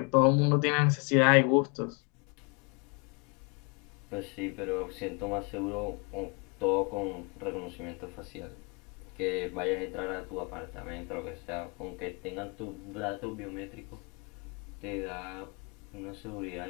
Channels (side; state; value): right; quieter; 33.1 dB